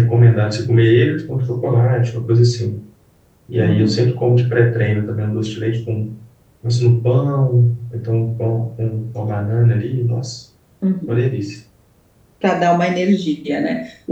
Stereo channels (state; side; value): identical; both; correlation 1.00